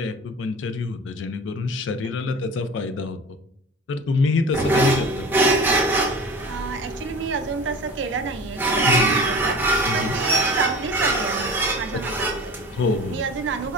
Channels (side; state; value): both; normal; correlation 0.37